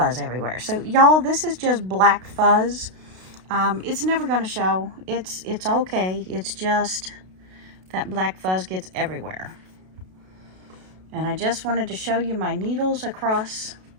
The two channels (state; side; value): late; left; 32 ms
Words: everywhere. So y'all, this is just black fuzz. It's never going to show. It's okay. It's just that black fuzz gets everywhere. And I just wanted to show you my needles across